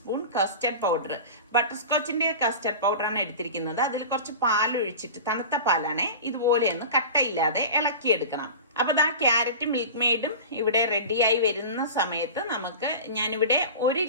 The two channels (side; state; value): both; inverted; correlation -0.33